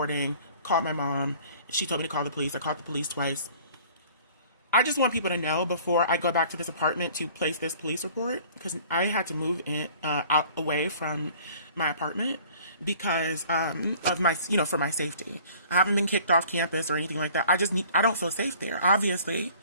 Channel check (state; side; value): inverted; both; correlation -0.51